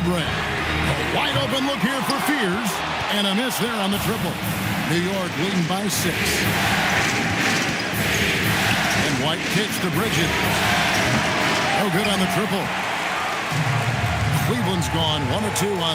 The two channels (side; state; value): both; identical; correlation 1.00